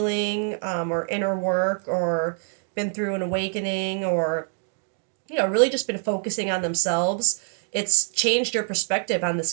or inner work, or been through an awakening, or really just been focusing on themselves, it's changed your perspective on this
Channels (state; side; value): silent; left; 62 dB below the other